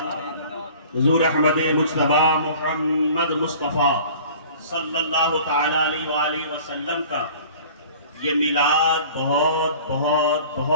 حضور احمد مجتبی محمد مصطفیٰ صلی اللہ تعالیٰ علیہ وآلہ وسلم کا یہ میلاد بہت بہت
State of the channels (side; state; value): both; inverted; correlation -0.46